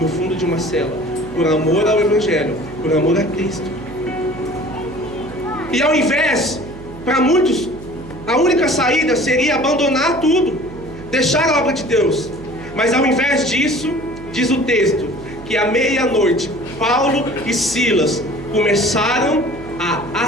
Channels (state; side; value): noise; right; hum, 15 dB below the sound